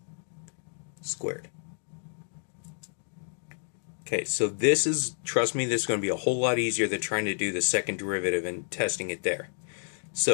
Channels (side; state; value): right; silent; 58 dB below the other